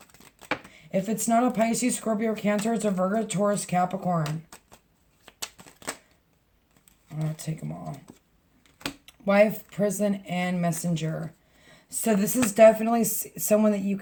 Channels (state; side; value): identical; both; correlation 1.00